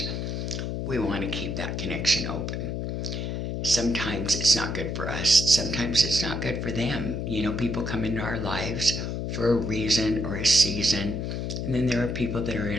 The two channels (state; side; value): noise; left; hum, 3 dB below the sound